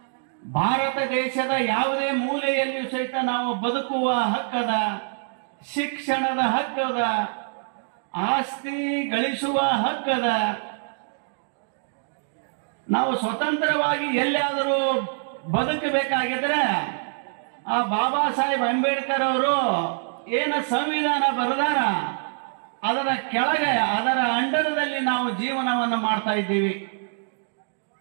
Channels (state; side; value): silent; left; digital silence